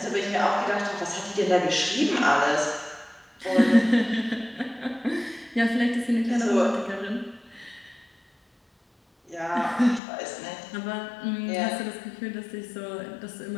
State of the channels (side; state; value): right; drops out; at 10.0 s